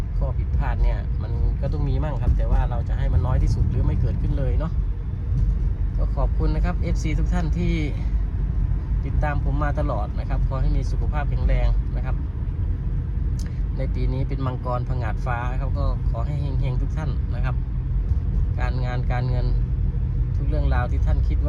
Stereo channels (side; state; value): both; identical; correlation 1.00